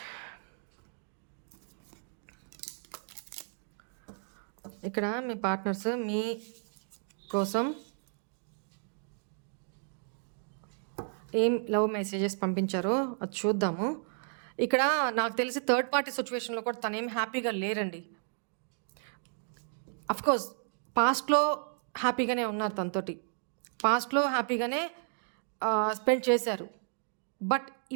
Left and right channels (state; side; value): silent; left; 56 dB below the other